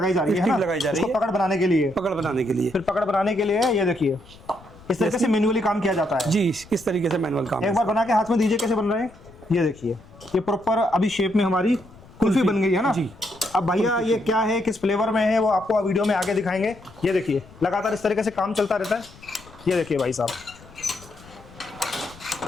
जा रही है, स्टिक लगाई जा रही है पकड़ बनाने के लिए। पकड़ बनाने के लिए, फिर पकड़ बनाने के लिए ये देखिए इस तरीके से मैन्युअली काम किया जाता है जी। इस तरीके से मैनुअल काम। एक बार बना के हाथ में दीजिए कैसे बन रहे हैं। ये देखिए ये प्रॉपर अभी शेप में हमारी कुल्फी बन गई है ना जी। अब भैया ये क्या है, किस फ्लेवर में है, वो आपको वीडियो में आगे दिखाएंगे। ये देखिए लगातार इस तरीके से काम चलता रहता है। ये देखिए भाई साहब,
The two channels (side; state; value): left; noise; rumble, 23 dB below the sound